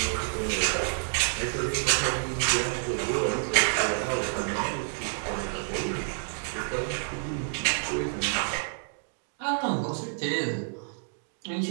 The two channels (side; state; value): left; silent; digital silence